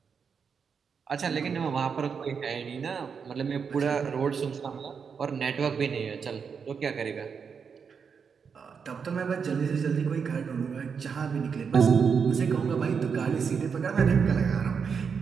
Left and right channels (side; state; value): left; quieter; 6.2 dB